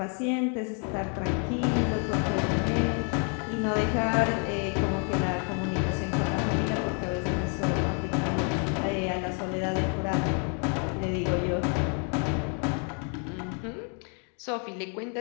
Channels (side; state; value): right; quieter; 39.8 dB